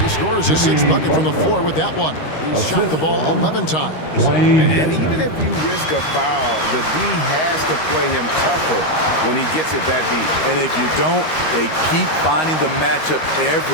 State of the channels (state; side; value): late; right; 13 ms